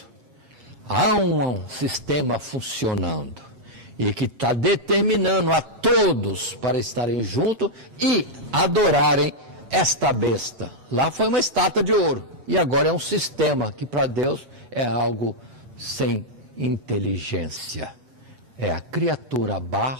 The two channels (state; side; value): late; left; 7.8 ms